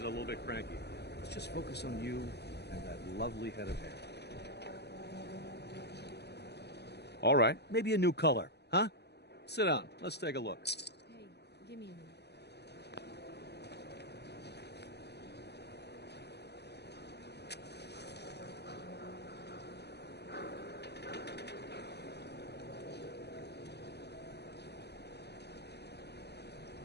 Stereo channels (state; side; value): late; right; 0.49 ms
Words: little bit cranky. Let's just focus on you and that lovely head of hair. All right. Maybe a new color, huh? Sit down. Let's take a look. Hey, give me a minute.